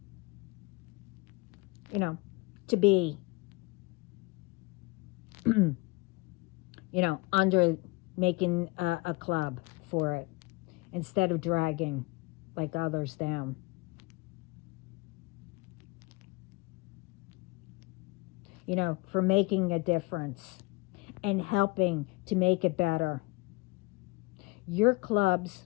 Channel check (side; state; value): right; quieter; 25.3 dB